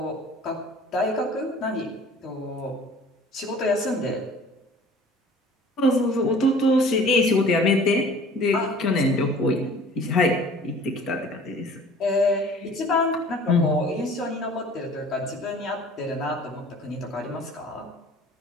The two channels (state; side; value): normal; both; correlation 0.48